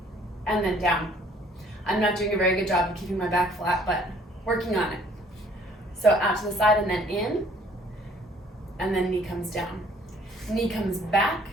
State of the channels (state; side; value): normal; both; correlation 0.59